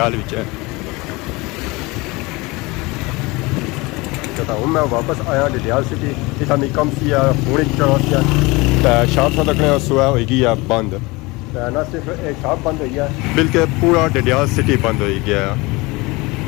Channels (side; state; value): right; quieter; 23.8 dB